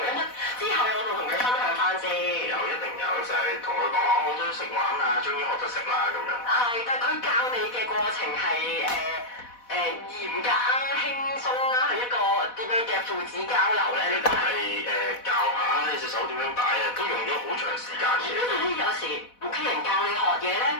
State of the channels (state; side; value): late; right; 4.1 ms